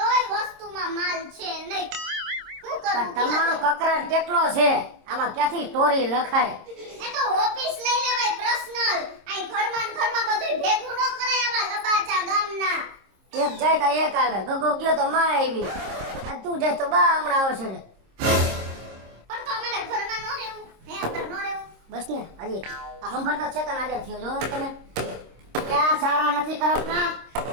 વસ્તુમાં માલ છે નહીં. શું કરું? તમારો કકરાટ કેટલો છે? આમાં ક્યાંથી સ્ટોરી લખાય? એ તો ઓફિસ લઈ લેવાય પર્સનલ. આઈ ઘરમાં ને ઘરમાં બધું ભેગું ન કરાય આવા લબાચા ગામના. એક જાય તો એક આવે. ગગો ગયો તો માં આવી. આ તું જાય તો બા હમણાં આવશે ને. પણ તો અમારે ઘરમાં ન રહેવું હે? અમારે ન રહેવું. બસ ને હજી સંભાળતો છે તને આજે થયો જો તમે ક્યાં સારા નથી કરતા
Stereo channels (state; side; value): late; left; 26 ms